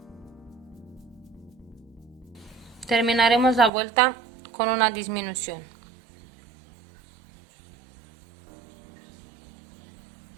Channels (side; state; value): left; drops out; at 3.7 s